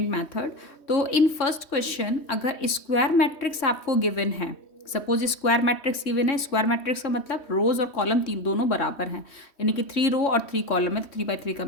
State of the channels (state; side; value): late; right; 3.1 ms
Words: method. तो इन फर्स्ट क्वेश्चन अगर स्क्वायर मैट्रिक्स आपको गिवन है, सपोज स्क्वायर मैट्रिक्स गिवन है, स्क्वायर मैट्रिक्स का मतलब रोज और कॉलम तीन दोनों बराबर हैं, यानी कि 3 रो और 3 कॉलम है, तो 3 by 3 का